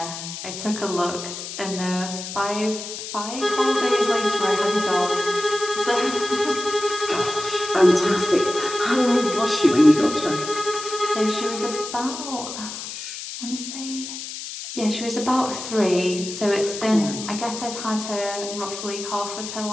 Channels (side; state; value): left; noise; hiss, 8 dB below the sound